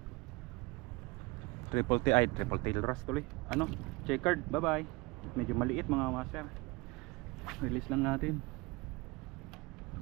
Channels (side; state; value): left; quieter; 24.8 dB